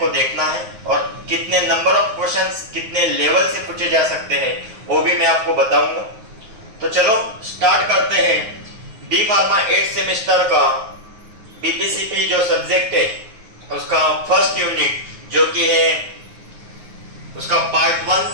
देखना है और कितने नंबर ऑफ क्वेश्चंस कितने लेवल से पूछे जा सकते हैं वो भी मैं आपको बताऊंगा। तो चलो स्टार्ट करते हैं डी फार्मा 8 सेमेस्टर का बीपीसीपी जो सब्जेक्ट है उसका फर्स्ट यूनिट जो कि है उसका part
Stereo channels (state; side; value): late; left; 9.5 ms